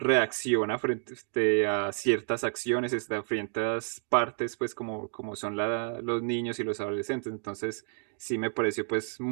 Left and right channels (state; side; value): silent; left; 58 dB below the other